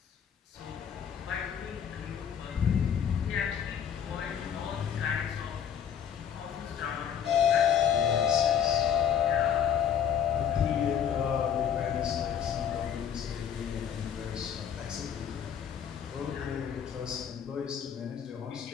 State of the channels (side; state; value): right; quieter; 8.4 dB